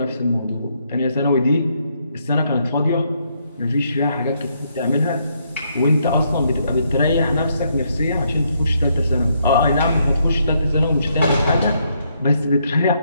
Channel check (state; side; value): inverted; both; correlation -0.74